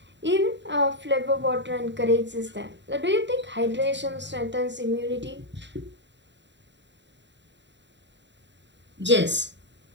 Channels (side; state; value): left; late; 0.52 ms